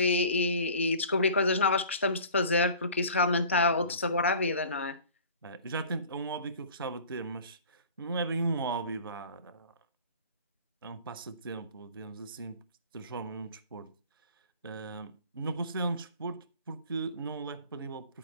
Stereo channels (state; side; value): inverted; both; correlation -0.44